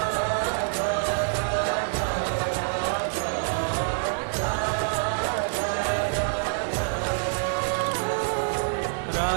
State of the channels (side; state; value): left; silent; 61 dB below the other